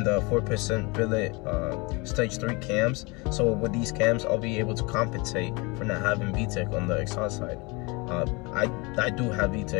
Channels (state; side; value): quieter; right; 27.2 dB